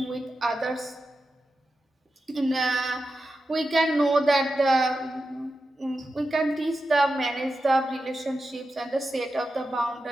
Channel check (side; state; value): both; normal; correlation 0.90